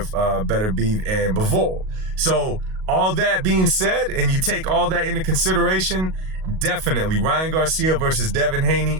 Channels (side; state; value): left; late; 38 ms